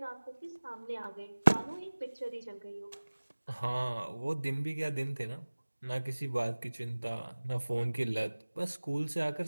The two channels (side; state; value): both; inverted; correlation -1.00